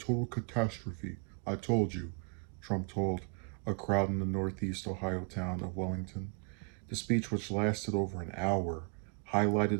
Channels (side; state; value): left; quieter; 36.7 dB